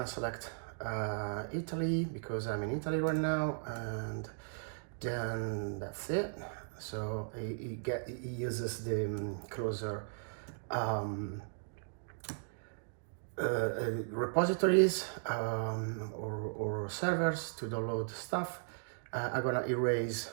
select Italy because I'm in Italy right now, and then that's it. So it uses the closer um, repositories or servers to download stuff. I'm gonna erase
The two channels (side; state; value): left; silent; digital silence